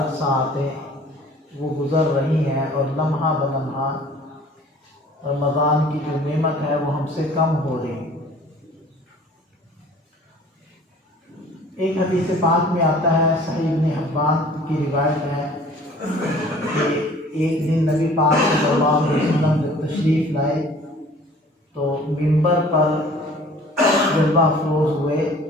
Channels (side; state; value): both; normal; correlation 0.50